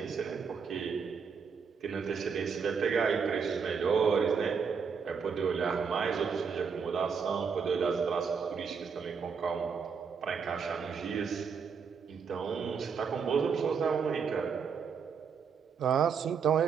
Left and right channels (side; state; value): left; quieter; 6.1 dB